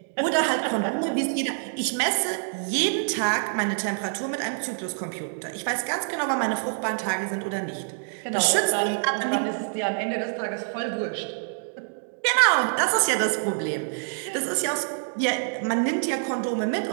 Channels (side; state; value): left; silent; digital silence